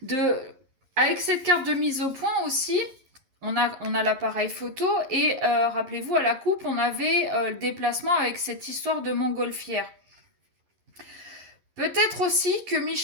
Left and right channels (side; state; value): left; late; 11 ms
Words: Avec cette carte de mise au point aussi, on a l'appareil photo et rappelez-vous, à la coupe, on avait le déplacement avec cette histoire de montgolfière. Peut-être aussi que